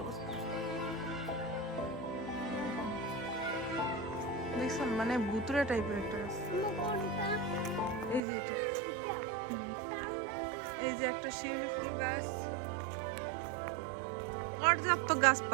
অবস্থা, দেখছেন? মানে ভুতুরে টাইপের একটা গাছ। এই যে এটা, এই যে একটা শিউলি ফুল গাছ, পর্যাপ্ত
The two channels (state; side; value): drops out; left; at 8.2 s